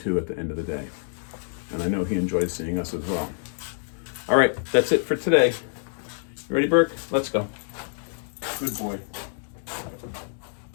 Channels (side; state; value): right; silent; 61 dB below the other